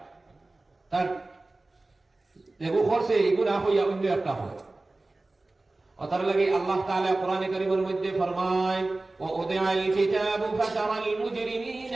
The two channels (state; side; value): quieter; left; 3.0 dB